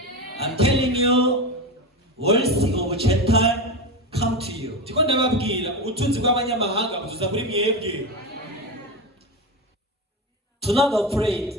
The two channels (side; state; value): both; normal; correlation 0.20